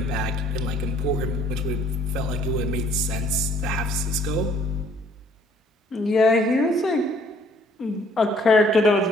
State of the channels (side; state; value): both; normal; correlation 0.60